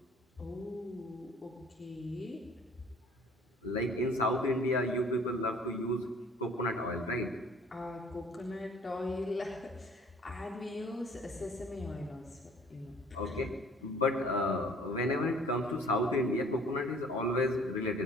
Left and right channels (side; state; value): both; normal; correlation 0.53